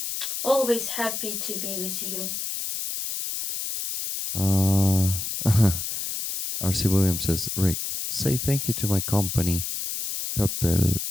Always happy to be with you. R.C. Williams says, Rick, say thank you to my company, Purple,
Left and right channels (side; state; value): left; noise; hiss, 4 dB below the sound